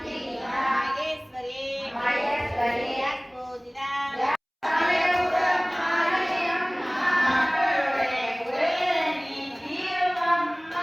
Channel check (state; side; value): identical; both; correlation 1.00